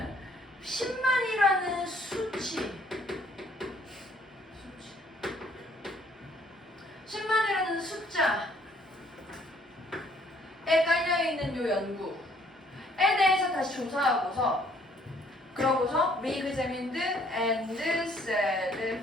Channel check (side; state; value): both; normal; correlation 0.62